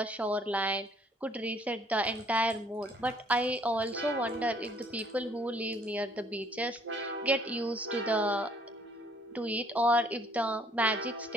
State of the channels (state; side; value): normal; both; correlation 0.61